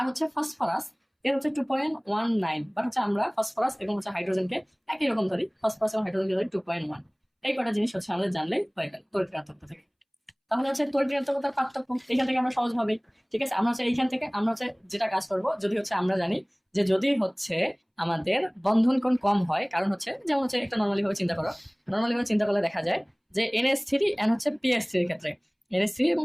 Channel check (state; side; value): identical; both; correlation 1.00